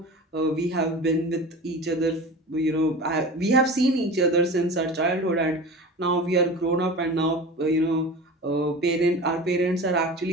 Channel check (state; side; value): normal; both; correlation 0.34